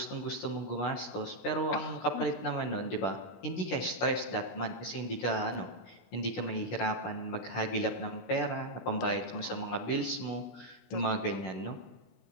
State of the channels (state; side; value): late; right; 16 ms